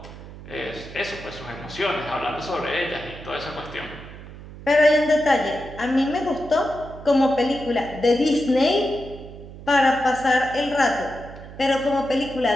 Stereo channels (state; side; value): noise; right; hum, 15 dB below the sound